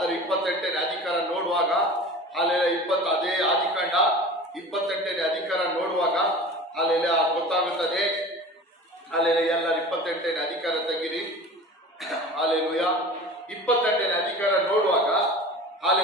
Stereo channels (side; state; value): both; normal; correlation 0.37